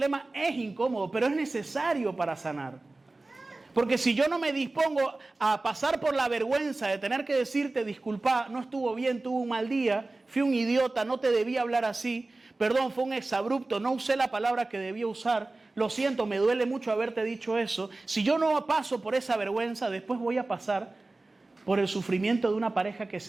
es incómodo, pero es necesario para sanar. Porque si yo no me dispongo a pasar por la vergüenza de tener que decirte, disculpa, no estuvo bien, tuve un mal día, fui un idiota, no te debía hablar así, perdón, fue un exabrupto, no usé la palabra que debía usar, lo siento, me duele mucho haberte dicho eso. Si yo no paso por esa vergüenza, después voy a pasar por el sufrimiento de una pareja que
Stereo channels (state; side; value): quieter; left; 3.1 dB